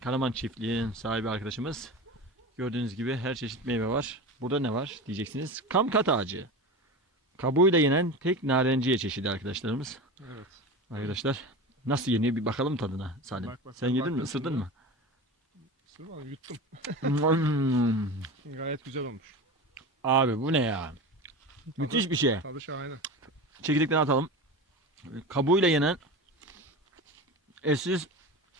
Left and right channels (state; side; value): normal; both; correlation 0.28